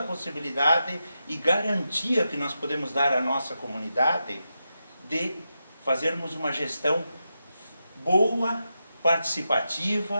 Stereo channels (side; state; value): both; inverted; correlation -0.88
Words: possibilidade e garantia que nós podemos dar à nossa comunidade de fazermos uma gestão boa,